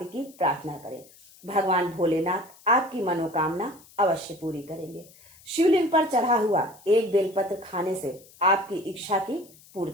की प्रार्थना करें। भगवान भोलेनाथ आपकी मनोकामना अवश्य पूरी करेंगे। शिवलिंग पर चढ़ा हुआ एक बेलपत्र खाने से आपकी इच्छा की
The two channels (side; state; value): left; noise; hiss, 25 dB below the sound